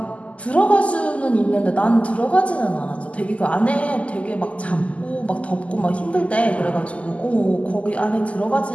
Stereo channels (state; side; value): late; right; 0.065 ms